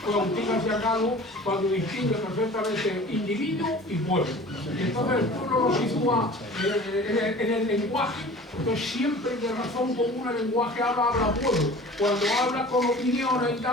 Agustín García Calvo, cuando distingue perfectamente individuo y pueblo. Entonces el pueblo lo sitúa en el lenguaje, entonces siempre de razón común el lenguaje habla pueblo. Cuando habla con opiniones y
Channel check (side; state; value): both; normal; correlation 0.43